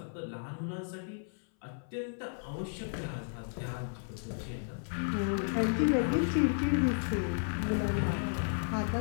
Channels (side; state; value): right; silent; 55 dB below the other